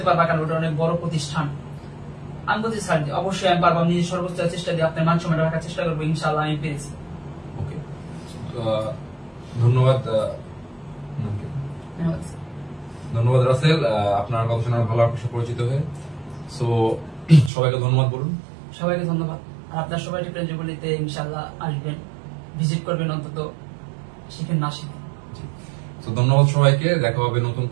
পারবা, কারণ ওটা অনেক বড় প্রতিষ্ঠান। আমি বলছি স্যার অবশ্যই আমি পারবো, নিজের সর্বোচ্চ চেষ্টা দিয়ে আপনার মান সম্মান রাখার চেষ্টা করবো, ইনশাআল্লাহ আমি পেরেছি। ওকে, ধন্যবাদ। ধন্যবাদ রাসেল, আপনার কথা শুনে ভালো আপনার সাথে পরিচিত হয়ে। সো সবাইকে ধন্যবাদ বলুন। সবাইকে ধন্যবাদ। আর আপনার সবাই টেকনোলজিতে ইনশাআল্লাহ আসবেন, ভিজিট করবেন, অন্তত শিখেন না শিখেন। তো ধন্যবাদ সবাইকে। দেখা হবে নতুন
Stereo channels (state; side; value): drops out; left; at 17.5 s